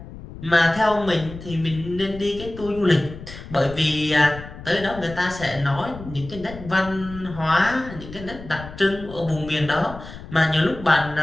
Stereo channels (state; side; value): noise; left; rumble, 14 dB below the sound